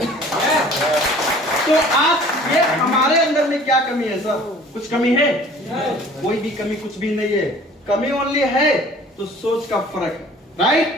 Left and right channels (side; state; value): both; normal; correlation 0.49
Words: तो आज ये हमारे अंदर में क्या कमी है सर? कुछ कमी है? कोई भी कमी कुछ भी नहीं है। कमी ओनली है तो सोच का फर्क है,